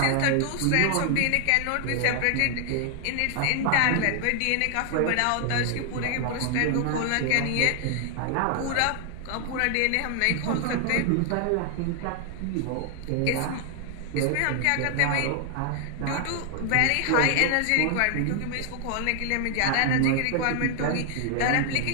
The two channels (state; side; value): different; both; correlation 0.00